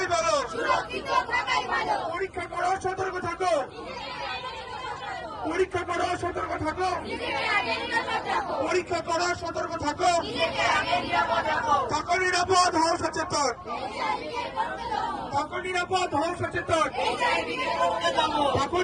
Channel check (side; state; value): both; identical; correlation 1.00